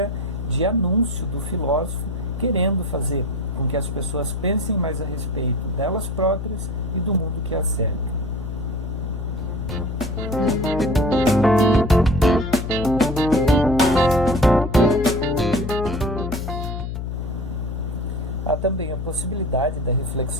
de anúncio do filósofo, querendo fazer com que as pessoas pensem mais a respeito delas próprias e do mundo que as cerca. Há também a possibilidade da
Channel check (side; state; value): left; noise; hum, 5 dB below the sound